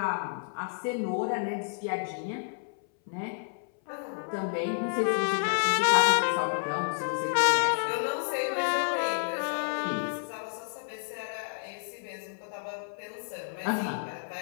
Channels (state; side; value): silent; right; 58 dB below the other